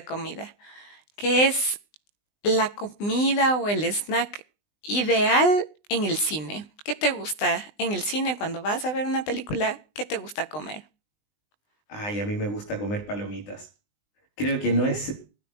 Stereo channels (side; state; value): right; late; 20 ms